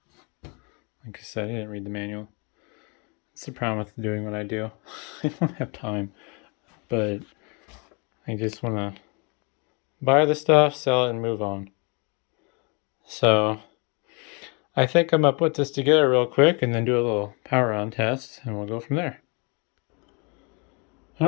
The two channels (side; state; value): right; quieter; 32.7 dB